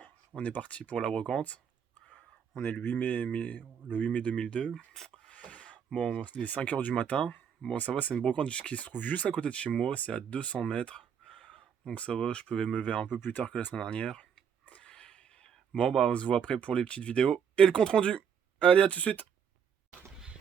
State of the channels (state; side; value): quieter; left; 7.6 dB